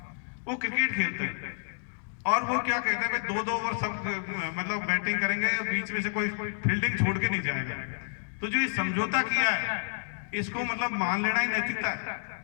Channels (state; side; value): silent; right; digital silence